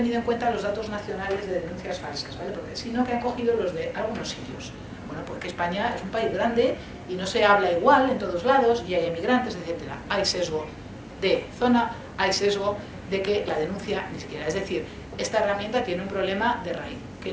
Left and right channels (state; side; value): identical; both; correlation 1.00